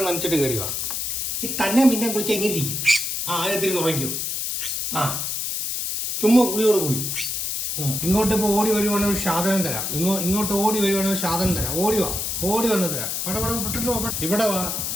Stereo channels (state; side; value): noise; left; hiss, 2 dB below the sound